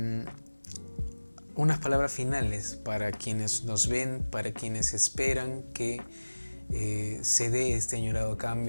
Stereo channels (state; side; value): inverted; both; correlation -1.00